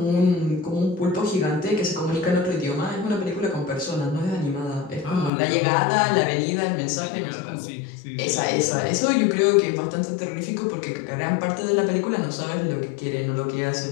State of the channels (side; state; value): right; drops out; at 5.3 s